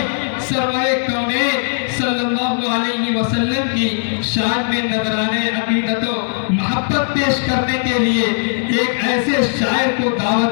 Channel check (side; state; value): right; silent; digital silence